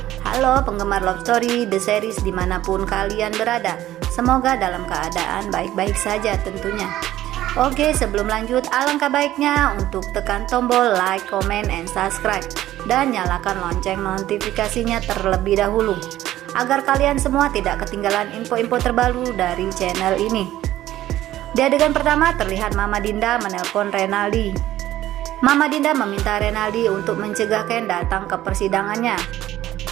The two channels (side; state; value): left; quieter; 14.0 dB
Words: Halo penggemar Love Story The Series dimanapun kalian berada, semoga dalam keadaan baik-baik saja tentunya. Oke, sebelum lanjut alangkah baiknya untuk tekan tombol like, comment, and subscribe, dan nyalakan lonceng notifikasinya terlebih dahulu agar kalian semua tidak ketinggalan info-info terbaru dari channel ini. Di adegan pertama terlihat Mama Dinda menelpon Renaldi. Mama Dinda meminta Renaldi untuk mencegah Ken datang ke persidangannya.